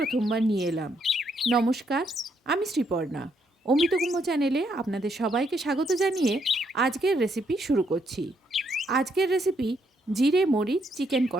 নিয়ে এলাম। নমস্কার, আমি শ্রীপর্ণা। অমৃত কুম্ভ চ্যানেলে আপনাদের সবাইকে স্বাগত জানিয়ে আজকের রেসিপি শুরু করছি। আজকের রেসিপি জিরে মরিচ চিকেন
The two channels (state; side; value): normal; both; correlation 0.74